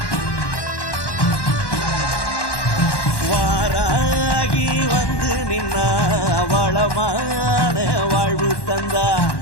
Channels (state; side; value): late; right; 1.1 ms